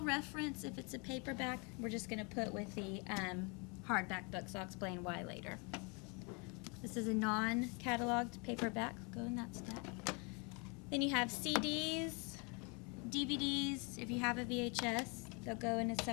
reference, if it's a paperback, we're just going to put with the hardback books. I'll explain why later. This is a non-cataloged paperback. Go in that stack. Then you have CDs, DVDs. If you have a VHS, they'll go in a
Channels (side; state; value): right; quieter; 32.3 dB